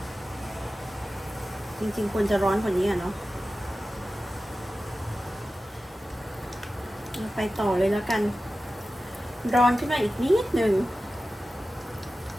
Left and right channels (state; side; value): normal; both; correlation 0.95